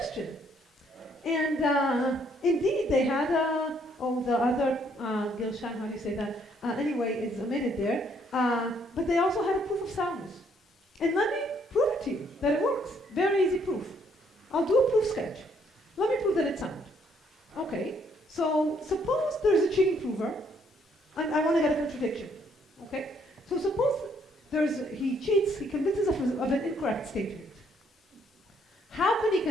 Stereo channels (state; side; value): normal; both; correlation 0.68